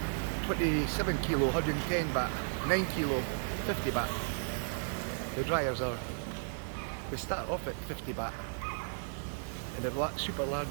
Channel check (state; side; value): silent; left; digital silence